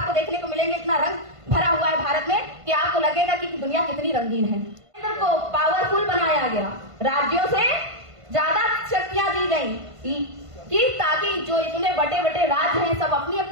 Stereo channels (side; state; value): left; late; 1.5 ms